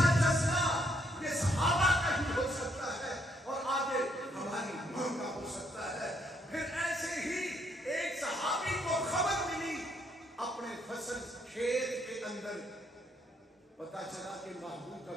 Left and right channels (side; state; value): both; normal; correlation 0.72